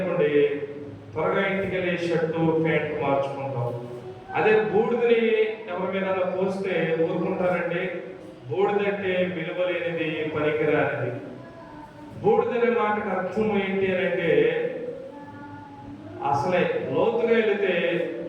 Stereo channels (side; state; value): both; identical; correlation 1.00